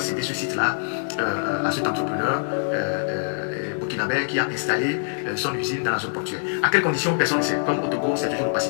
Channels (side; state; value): right; silent; digital silence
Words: cédé ce site-là à cet entrepreneur burkinabé qui a installé son usine dans la zone portuaire. À quelles conditions, personne ne sait. Comme au Togo, c'est toujours